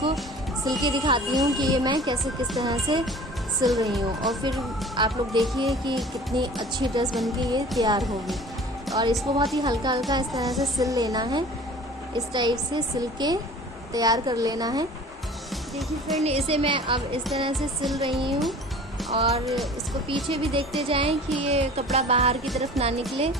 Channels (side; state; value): both; normal; correlation 0.44